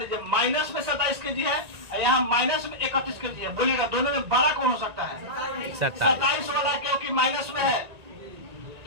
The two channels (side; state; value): left; late; 1.8 ms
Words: माइनस में 27 केजी है, यहाँ माइनस में 31 केजी है। बोलिएगा दोनों में बड़ा कौन हो सकता है? 27 वाला, क्योंकि माइनस में है।